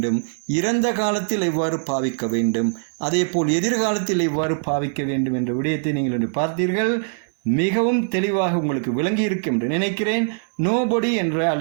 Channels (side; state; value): left; silent; digital silence